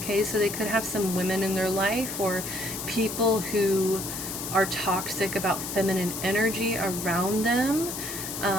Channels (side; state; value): left; noise; hiss, 6 dB below the sound